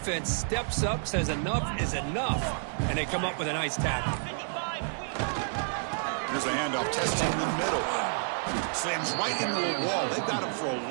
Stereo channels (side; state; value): left; silent; digital silence